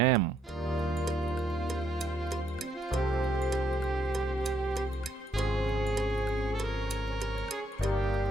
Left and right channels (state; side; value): normal; both; correlation 0.73